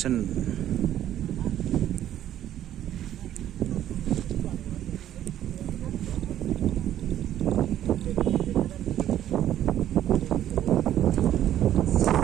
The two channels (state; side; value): quieter; left; 11.7 dB